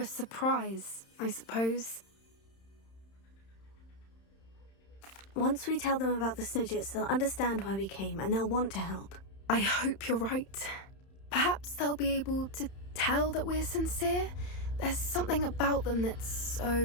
surprise, I suppose. Once we tell them about the Snidgets, they'll understand why we came and they'll want to help. I hope you're right. Perhaps they'll be able to tell that we're sincere. There's something about them that's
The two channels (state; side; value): late; right; 31 ms